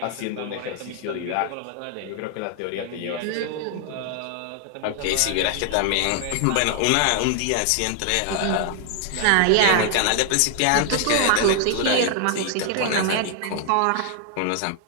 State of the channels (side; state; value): both; different; correlation 0.00